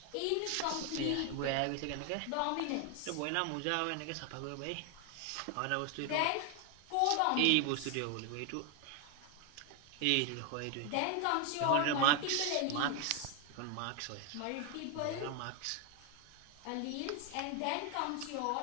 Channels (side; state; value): both; different; correlation 0.01